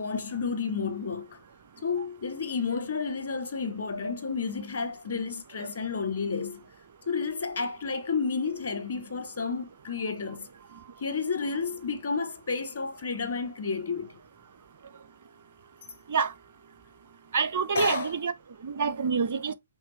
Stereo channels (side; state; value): both; inverted; correlation -0.56